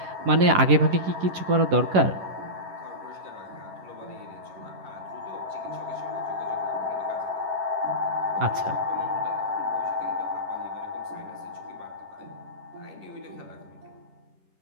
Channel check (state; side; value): late; left; 11 ms